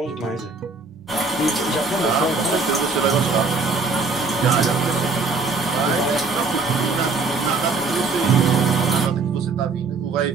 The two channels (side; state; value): left; quieter; 4.0 dB